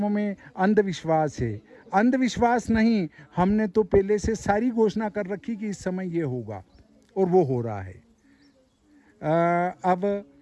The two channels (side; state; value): both; identical; correlation 1.00